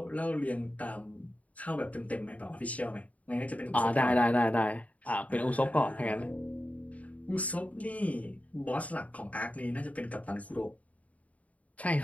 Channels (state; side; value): late; right; 0.069 ms